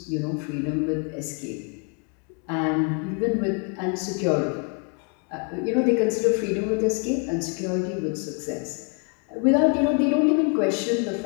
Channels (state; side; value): quieter; right; 38.4 dB